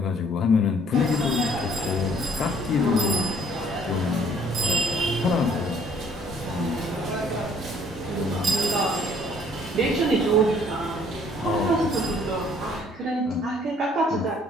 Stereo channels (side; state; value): both; normal; correlation 0.60